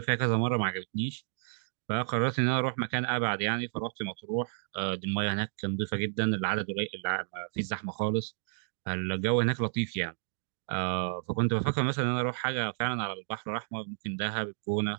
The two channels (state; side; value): silent; left; digital silence